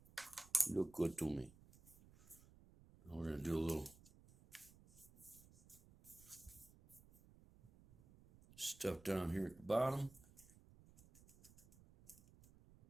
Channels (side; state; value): right; noise; rumble, 23 dB below the sound